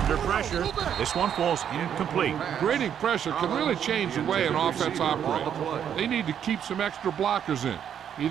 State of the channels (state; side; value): quieter; left; 8.9 dB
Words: pressure, this one falls incomplete. Grading pressure can really change the way an offense operates. They need to keep some extra blockers in,